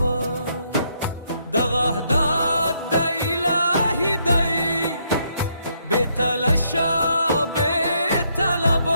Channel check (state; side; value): inverted; both; correlation -0.73